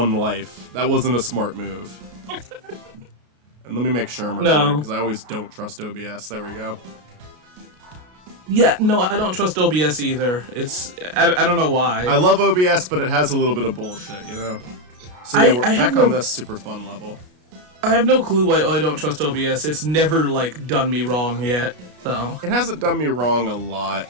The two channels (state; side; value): late; left; 33 ms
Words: life. That wasn't a smart move. And let me make sure I'm recording, because I always don't trust OBS. There we go. Yeah, no, I don't trust OBS either. I don't know why. I love OBS, but it has a little bit of bullshit, you know? So yeah, we're back on this super fun level. I have no clue why I don't trust OBS. It's never, like, done me wrong yet, so... It hasn't done me wrong a lot.